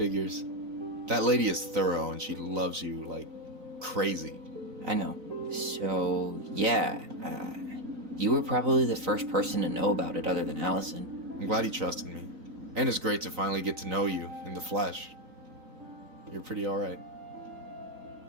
That lady is thorough and she loves you like crazy. I know. So, yeah, you were probably the first person to know about it other than Allison. I'm glad he trusted me. And it's great to finally get to know you in the flesh. You're pretty alright.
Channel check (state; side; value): late; left; 3.9 ms